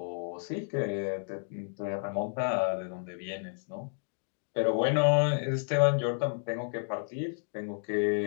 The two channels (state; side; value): silent; right; digital silence